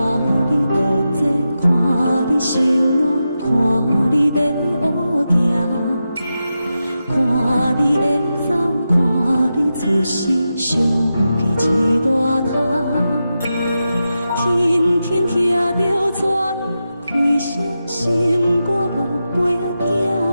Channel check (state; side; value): inverted; both; correlation -0.90